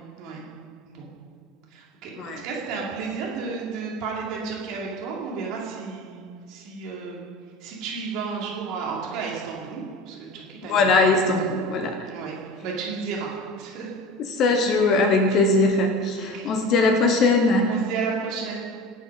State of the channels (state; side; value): normal; both; correlation 0.34